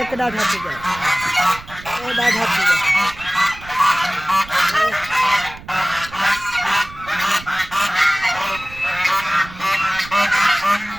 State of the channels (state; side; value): noise; right; rumble, 17 dB below the sound